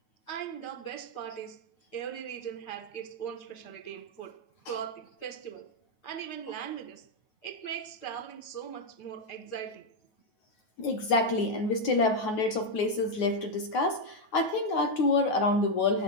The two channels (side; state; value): right; late; 9.3 ms